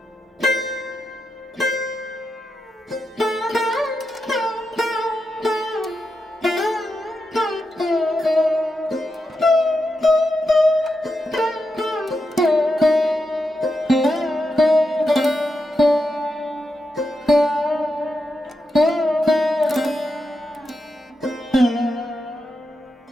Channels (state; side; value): normal; both; correlation 0.86